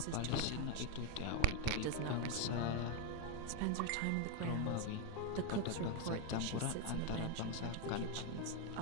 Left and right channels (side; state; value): both; different; correlation 0.02